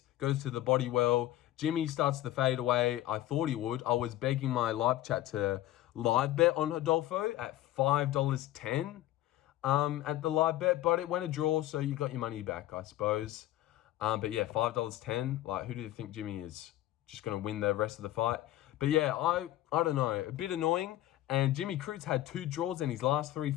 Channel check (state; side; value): quieter; right; 14.6 dB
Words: goes to the body well. Jimmy starts to fade away. I thought he would. I was begging my live chat to live bet on Rodolfo at $5.10 at the live bet, but it went a draw, so you got your money back, I suppose. But yeah, $5.10. Like, who do you think Jimmy is? Just going to win the rest of the fight? But yeah, I don't know. A bit annoying. And Jimmy Crute's had 2 draws in his last 3